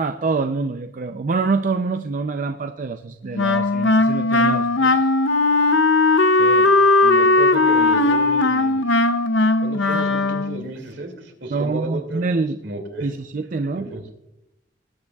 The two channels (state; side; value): normal; both; correlation 0.17